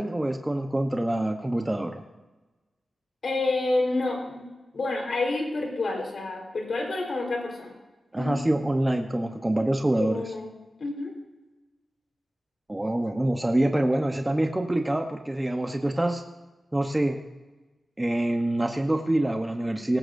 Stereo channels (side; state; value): both; normal; correlation 0.96